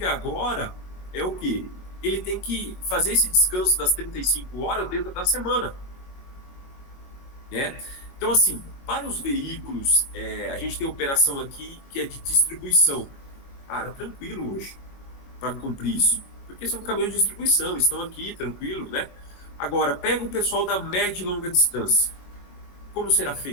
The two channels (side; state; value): right; late; 22 ms